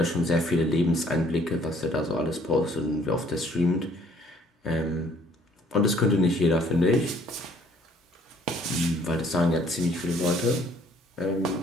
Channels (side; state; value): both; normal; correlation 0.60